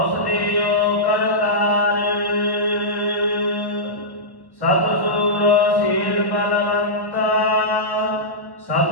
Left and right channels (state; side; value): late; right; 1.1 ms